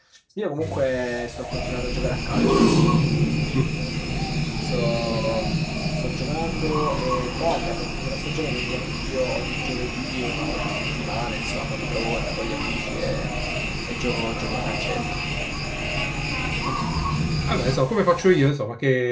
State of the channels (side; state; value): both; identical; correlation 1.00